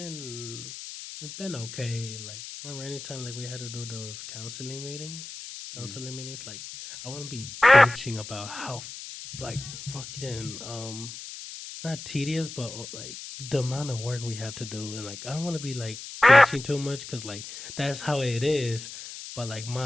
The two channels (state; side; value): noise; left; hiss, 11 dB below the sound